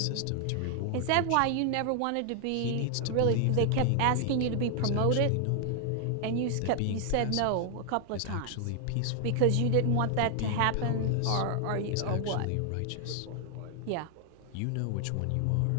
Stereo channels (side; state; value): both; different; correlation 0.00